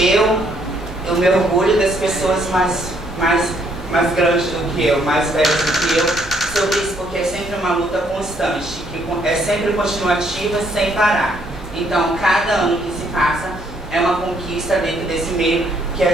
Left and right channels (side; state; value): both; normal; correlation 0.69